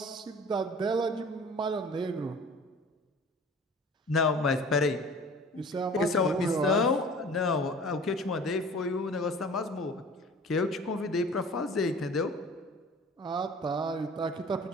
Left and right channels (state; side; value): normal; both; correlation 0.44